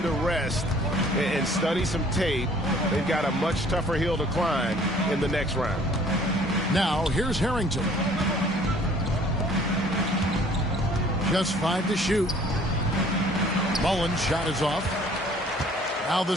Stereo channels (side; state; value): both; normal; correlation 0.55